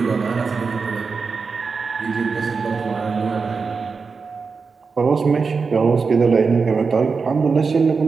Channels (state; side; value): quieter; left; 4.9 dB